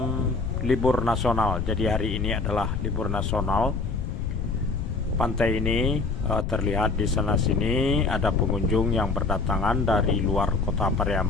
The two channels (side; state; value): left; noise; rumble, 2 dB below the sound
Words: libur nasional. Jadi hari ini adalah libur nasional. Pantai ini terlihat di sana sini ada pengunjung yang berdatangan dari luar kota